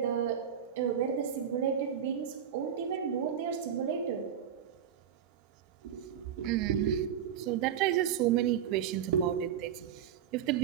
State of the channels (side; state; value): left; quieter; 8.9 dB